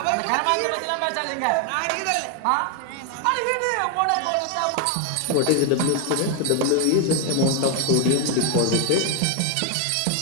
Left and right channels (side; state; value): both; different; correlation 0.01